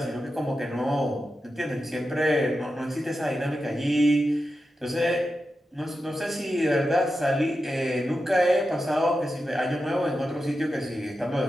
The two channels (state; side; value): normal; both; correlation 0.90